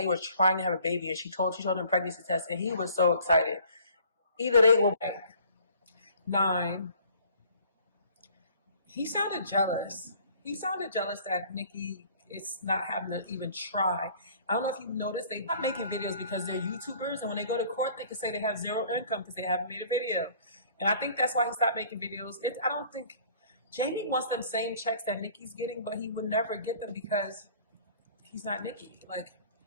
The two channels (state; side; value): inverted; both; correlation -0.54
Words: were trying to have a baby, and she told him pregnancy test, and he was so excited. Either they will. 9. He sounded jealous. He sounded jealous that Nikki is not having to even try. I don't know if you've noticed, they're not making videos because they're YouTubers, and when they go to court, they can say they have zero income because they haven't made a video. And I think that's why he stopped making videos. I don't think Jamie wants them same checks that Nikki's getting, but he would never get them because he's not Nikki. Like,